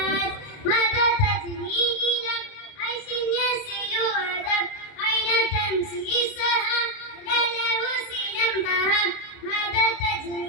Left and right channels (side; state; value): right; late; 29 ms